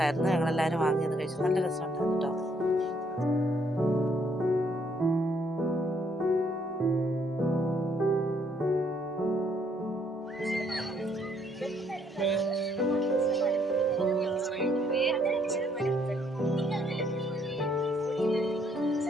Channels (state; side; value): normal; both; correlation 0.69